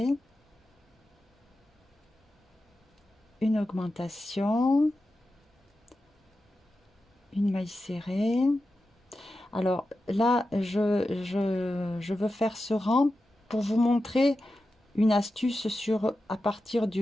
une augmentation, une maille serrée. Alors là, je veux faire ce rang pour vous montrer une astuce à partir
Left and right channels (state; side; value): normal; both; correlation 0.92